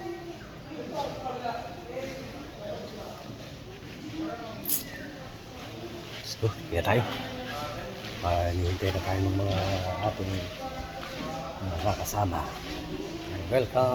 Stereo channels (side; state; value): both; identical; correlation 1.00